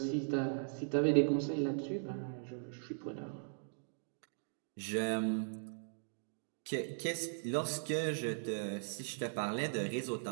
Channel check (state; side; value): silent; left; digital silence